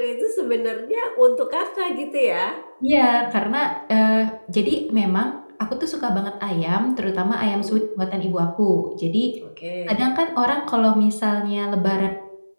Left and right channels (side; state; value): both; inverted; correlation -1.00